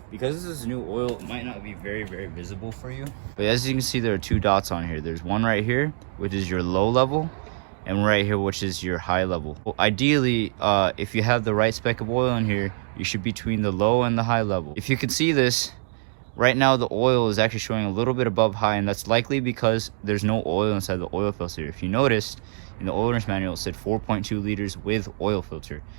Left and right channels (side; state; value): left; silent; digital silence